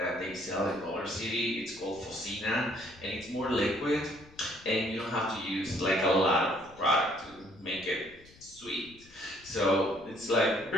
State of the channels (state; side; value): noise; left; rumble, 24 dB below the sound